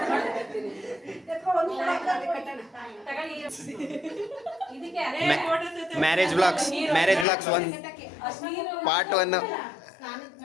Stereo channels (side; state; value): right; drops out; at 7.2 s